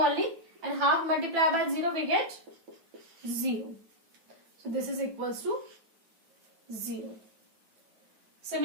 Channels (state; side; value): late; left; 9.2 ms